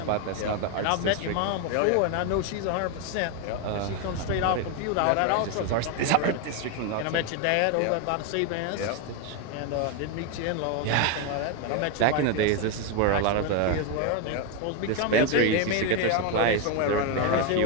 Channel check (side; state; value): both; different; correlation 0.02